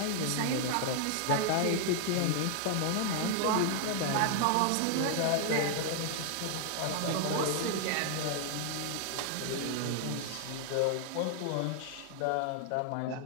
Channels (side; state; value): both; different; correlation 0.00